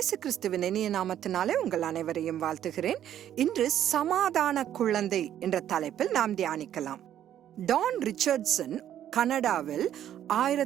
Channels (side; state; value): left; quieter; 10.9 dB